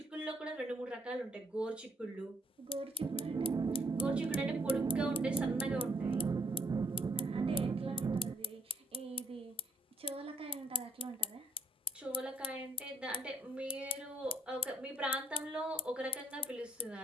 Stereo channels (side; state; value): both; normal; correlation 0.68